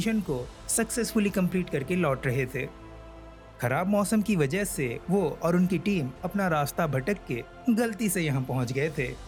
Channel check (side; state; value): both; identical; correlation 1.00